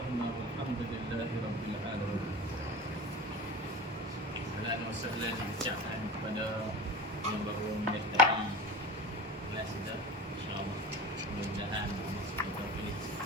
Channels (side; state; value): both; normal; correlation 0.34